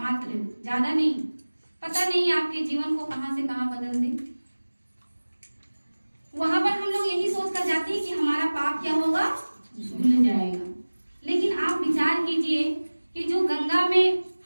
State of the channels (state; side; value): inverted; both; correlation -1.00